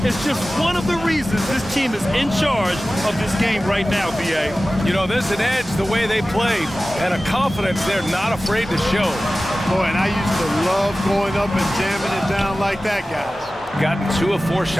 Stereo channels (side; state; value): both; normal; correlation 0.96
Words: is just one of the reasons this team is in charge of this game right now, B.A. You know, there's an edge the way they play and a confidence they're not afraid to show. Boy, and I used to love going up and jamming it down like that, guys. Gotten 2 of 4